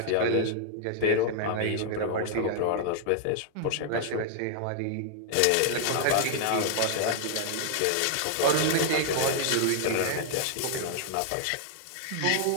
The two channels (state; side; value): different; both; correlation -0.01